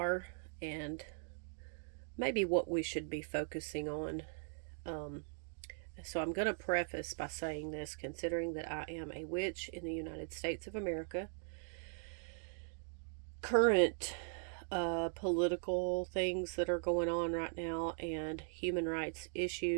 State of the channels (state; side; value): silent; left; 51 dB below the other